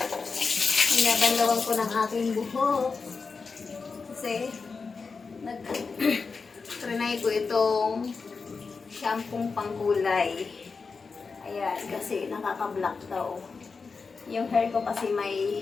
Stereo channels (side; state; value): right; quieter; 4.7 dB